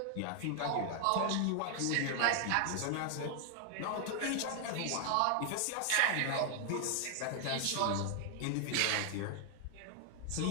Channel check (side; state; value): both; different; correlation 0.00